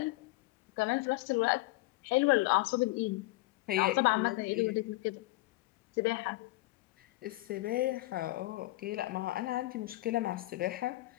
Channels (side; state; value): right; quieter; 19.8 dB